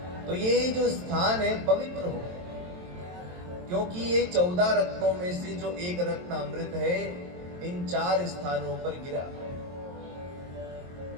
तो ये जो स्थान है पवित्र हो, क्योंकि ये 14 रत्नों में से जो एक रत्न अमृत है इन 4 स्थानों पर गिरा,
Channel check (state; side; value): late; left; 23 ms